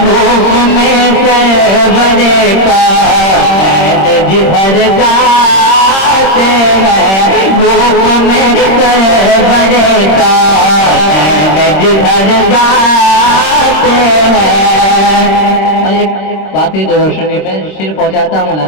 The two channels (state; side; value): late; right; 26 ms